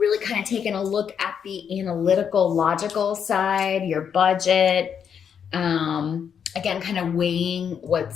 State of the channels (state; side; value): quieter; right; 7.6 dB